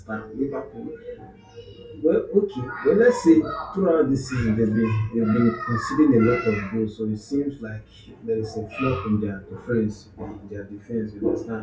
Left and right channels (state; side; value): identical; both; correlation 1.00